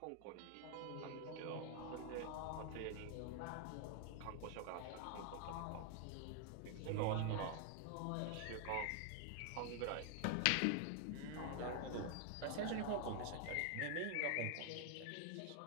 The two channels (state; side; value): different; both; correlation 0.00